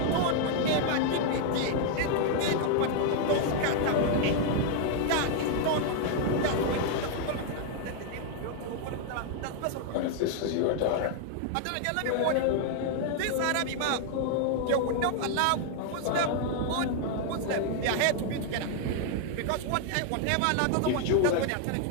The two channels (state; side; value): different; both; correlation 0.00